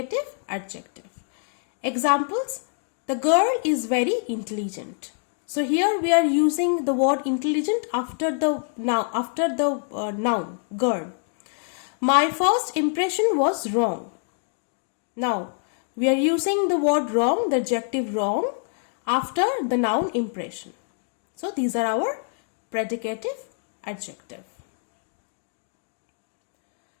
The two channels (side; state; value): right; silent; 61 dB below the other